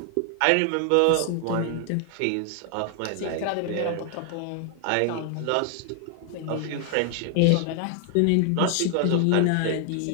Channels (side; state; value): both; different; correlation 0.00